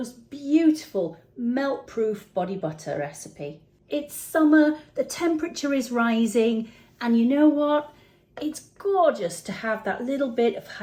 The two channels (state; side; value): identical; both; correlation 1.00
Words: beautiful melt-proof body butter recipe. It's summer, the temperature is rising, and you know what? It's gorgeous to have that little bit of